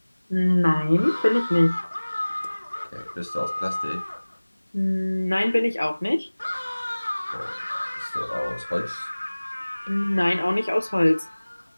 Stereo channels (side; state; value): both; inverted; correlation -1.00